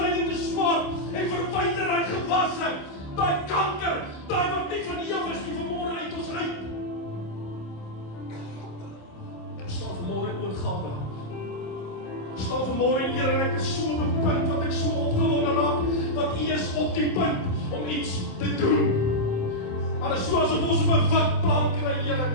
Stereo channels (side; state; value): right; late; 27 ms